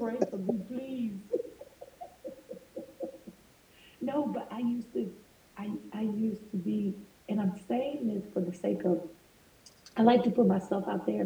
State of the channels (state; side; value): identical; both; correlation 1.00